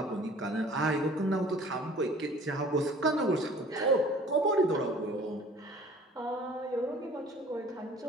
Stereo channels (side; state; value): both; normal; correlation 0.49